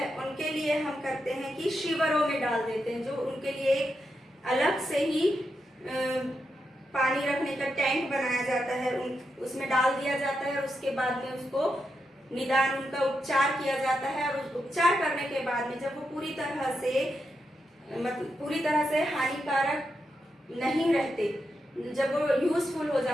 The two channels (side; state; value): both; normal; correlation 0.85